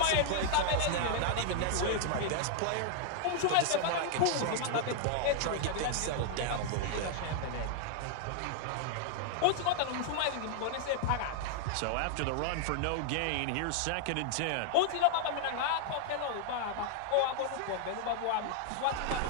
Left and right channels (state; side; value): different; both; correlation 0.00